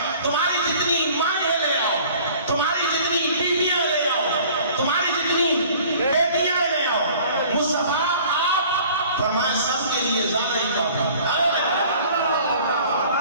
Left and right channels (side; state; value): both; inverted; correlation -0.49